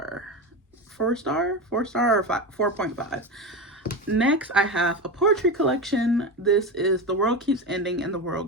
4-star or 4.5. Next, I have a poetry collection. This is The World Keeps Ending and the World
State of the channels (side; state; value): both; normal; correlation 0.20